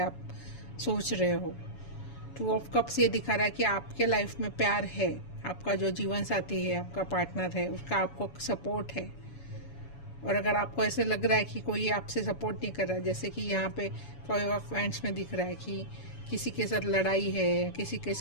सोच रहे हो। टू ऑफ कप्स ये दिखा रहा है कि आपके लाइफ में प्यार है, आपका जो जीवन साथी है, आपका पार्टनर है, उसका आपको सपोर्ट है। और अगर आपको ऐसे लग रहा है कि कोई आपसे सपोर्ट नहीं कर रहा, जैसे कि यहाँ पे 5 ऑफ वांड्स में दिख रहा है कि किसी के साथ लड़ाई है, किसी के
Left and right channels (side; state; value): right; late; 7.1 ms